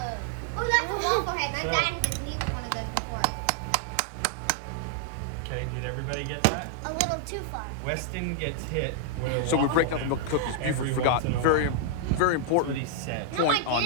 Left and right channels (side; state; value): both; different; correlation 0.00